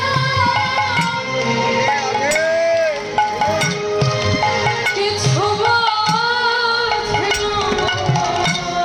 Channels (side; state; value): both; identical; correlation 1.00